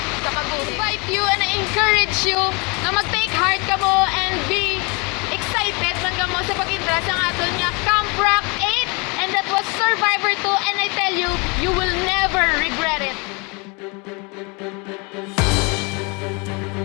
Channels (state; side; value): quieter; right; 30.6 dB